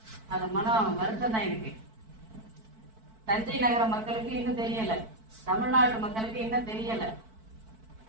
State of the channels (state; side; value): late; left; 4.5 ms